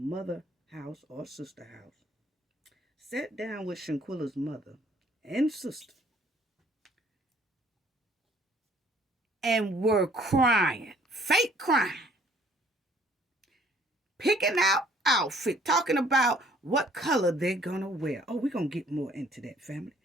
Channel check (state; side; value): normal; both; correlation 0.59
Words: house or sister house, sat down with Shanquella's mother and sister, and were crying, fake crying, picking out outfit, talking about what color they're gonna wear. Oh, we're gonna get more into that, family.